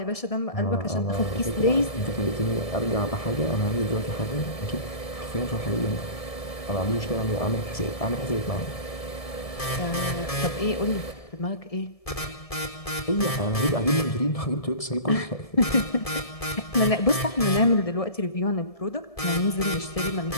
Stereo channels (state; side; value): late; right; 1.7 ms